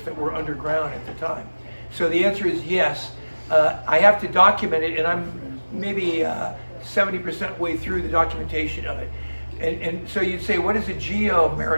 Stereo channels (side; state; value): both; inverted; correlation -1.00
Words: that were underground at the time. So the answer is yes. I have to document it, and I'm maybe 70% way through the documentation of it. And so you'd say, what is a